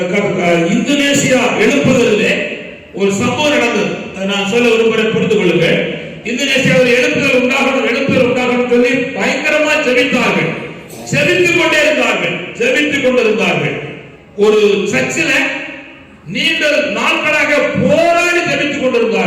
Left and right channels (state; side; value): identical; both; correlation 1.00